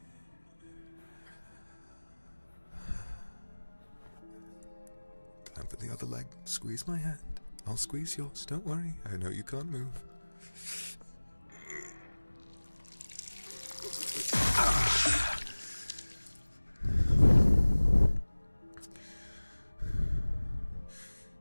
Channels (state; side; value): inverted; both; correlation -1.00